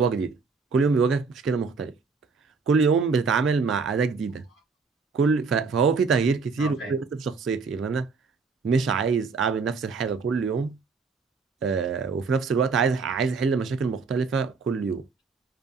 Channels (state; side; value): quieter; left; 4.8 dB